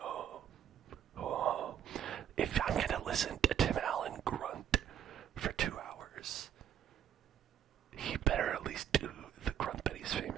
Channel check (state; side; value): quieter; left; 9.5 dB